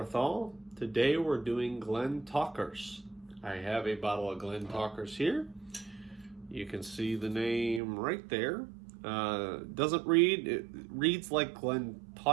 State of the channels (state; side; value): drops out; left; at 7.8 s